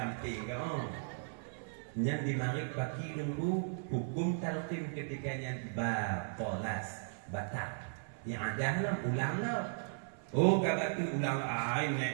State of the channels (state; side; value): silent; left; 53 dB below the other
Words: kau. Yang dimarik bagi nunggu hukum talqin ketikanya balas batal. Yang ada lah ulang lah. Oh kata tu ulang